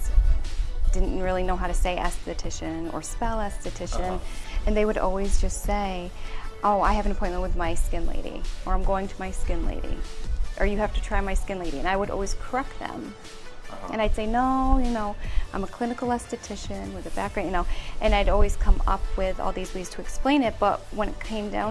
didn't really know how to say esthetician or spell esthetician. And they would always just say, oh, I have an appointment with my skin lady, or I'm going to my skin lady, or you have to try my skin lady. And I would always correct them. And I'd say, no, I'm a clinical esthetician with a background, and I'd always come up with all these ways to explain it. But when it came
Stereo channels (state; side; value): identical; both; correlation 1.00